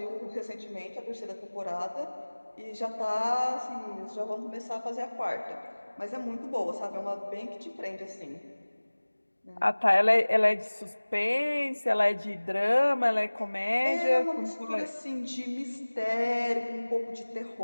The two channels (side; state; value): both; inverted; correlation -1.00